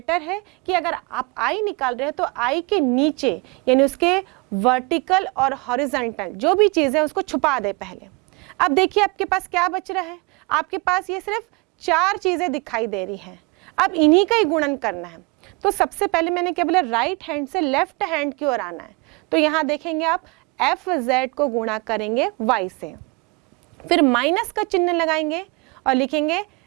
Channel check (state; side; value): quieter; left; 27.4 dB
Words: है कि अगर आप i निकाल रहे हैं तो i के नीचे यानी उसके वर्टिकल और हॉरिजॉन्टल जो भी चीज़ है उसको छुपा दे पहले। अब देखिए आपके पास क्या बच रहा है, आपके पास ये सिर्फ 4 चीज़ें दिखाई दे रही हैं। अब इन्हीं का ही गुणन करना है। तो सबसे पहले मैंने क्या बोला, राइट हैंड से लेफ्ट हैंड की ओर आना है। तो यहाँ देखेंगे आप fz को गुणा करेंगे y से, फिर माइनस का चिन्ह लगाएंगे और लिखेंगे